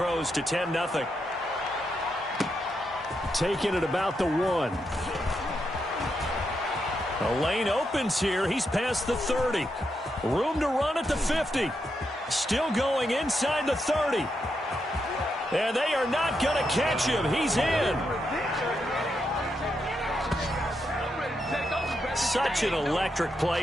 to 10-0. Taking it about the 1. A lane opens here. He's past the 30. Room to run at the 50. Still going inside the 30. And they are not going to catch him. He's in. Such an electric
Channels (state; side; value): normal; both; correlation 0.83